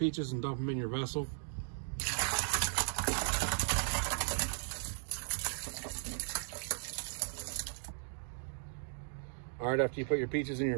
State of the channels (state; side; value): silent; left; digital silence